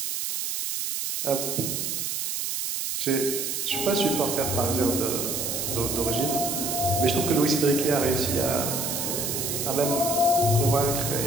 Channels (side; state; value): right; noise; hiss, 2 dB below the sound